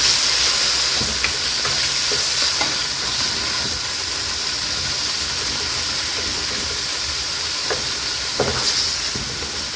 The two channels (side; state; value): both; identical; correlation 1.00